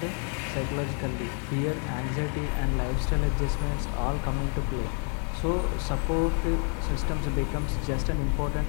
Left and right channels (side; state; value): right; quieter; 39.0 dB